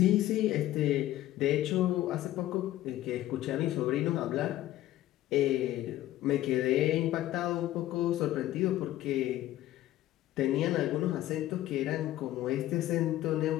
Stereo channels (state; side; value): quieter; right; 14.4 dB